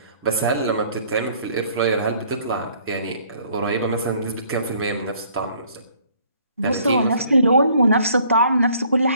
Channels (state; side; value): inverted; both; correlation -0.61